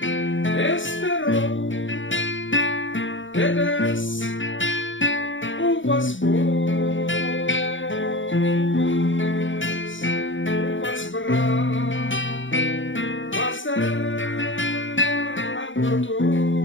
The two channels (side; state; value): right; late; 0.56 ms